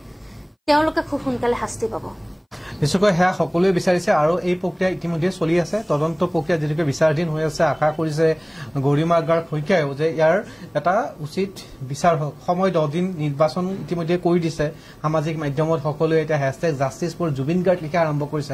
তেওঁলোকে খুব সোনকালে শাস্তি পাব নিশ্চয়কৈ সেয়া সকলোৱে বিচাৰিছে আৰু এই প্ৰক্ৰিয়া ইতিমধ্যে চলি আছে তদন্ত প্ৰক্ৰিয়া যেনেকৈ বিচাৰাধীন হৈ আছে আশা কৰিছে গৰিমা গাৰ্গ শইকীয়াও যে ইয়াৰ এটা উচিত বিচাৰ হওক সময় 10 দিন নিৰ্বাচন ইতিমধ্যে কৰি দিছে সামাজিক মাধ্যমত সকলোৱে এতিয়া #জাষ্টিছ ফৰ জুবিন গাৰ্গ লিখা আৰম্ভ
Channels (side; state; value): both; identical; correlation 1.00